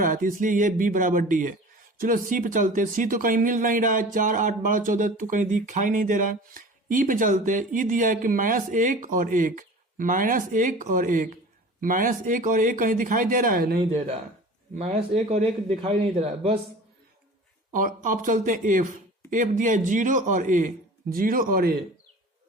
है, तो इसलिए ये B बराबर D है। चलो C पे चलते हैं। C तो कहीं मिल नहीं रहा है, 4 8 12 14 तो कहीं दिखाई नहीं दे रहा है। E पे चलते हैं। E दिया है कि -1 और 1, -1 और 1, -1 और 1 कहीं दिखाई दे रहा है? नहीं दे रहा है। -1 और 1 दिखाई नहीं दे रहा है बस। और अब चलते हैं F। F दिया है 0 और A, 0 और A,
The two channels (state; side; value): normal; both; correlation 0.40